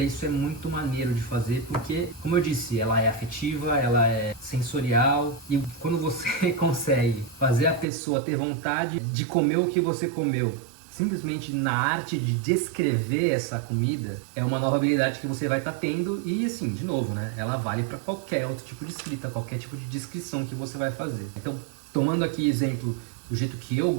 isso é muito maneiro de fazer, porque, como eu disse, ela é afetiva, ela é sensorial, e quando você consegue fazer a pessoa ter vontade de comer o que você comeu, simplesmente na arte de descrever essa comida, é uma nova habilidade que você vai estar tendo. E assim, de novo, né, ela vale para qualquer outro tipo de escrita, qualquer tipo de descrição que você vai fazer. Então, tomando aqui exemplo do jeito que eu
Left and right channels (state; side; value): drops out; left; at 7.9 s